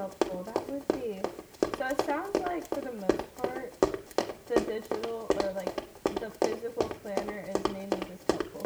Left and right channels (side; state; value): both; identical; correlation 1.00